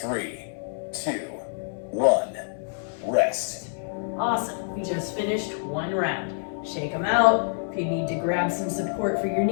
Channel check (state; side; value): silent; right; 59 dB below the other